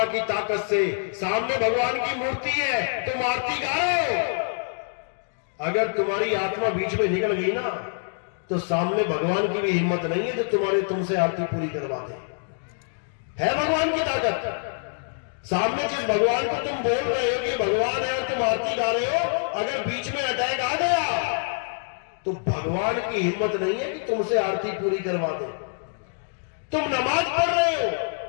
की ताकत से। सामने भगवान की मूर्ति है, तुम आरती गा रहे हो, अगर तुम्हारी आत्मा बीच में निकल गई ना तो सामने भगवान की भी हिम्मत नहीं है जो तुमसे आरती पूरी करवा दे। है भगवान की ताकत। सामने जिस भगवान को तुम बोल रहे हो कि भगवान है और तुम आरती गा रहे हो, अगर बीच में अटैक आ गया तो भगवान की हिम्मत नहीं है कि तुमसे आरती पूरी करवा दे। तुम नमाज पढ़ रहे हो,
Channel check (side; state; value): right; silent; digital silence